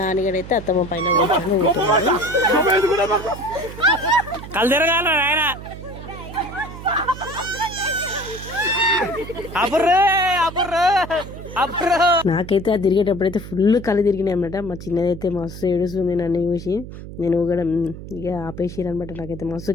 నాన్నగాడైతే అత్తమ్మ పైన కూర్చొని ఊగుతున్నాడు. నాకైతే అది తిరిగేటప్పుడైతే ఫుల్ కళ్ళు తిరిగినాయి అనమాట. మా చిన్నదైతే మస్తు ఏడుస్తుంది నన్ను చూసి. నేను కూడా ఇక ఆపేసిరు అనమాట. నాకైతే మస్తు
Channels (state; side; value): noise; right; hum, 12 dB below the sound